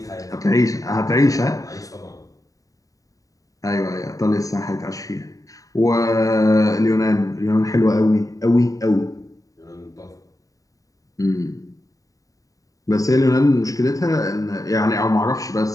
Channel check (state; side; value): late; right; 0.16 ms